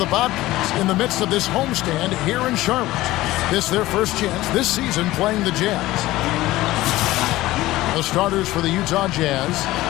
Bobcats in the midst of this homestand here in Charlotte. This is their first chance this season playing the Jazz. The starters for the Utah Jazz.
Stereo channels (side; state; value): right; quieter; 17.2 dB